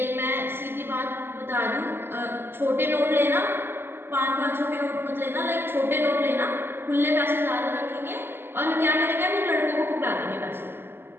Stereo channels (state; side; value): late; left; 0.11 ms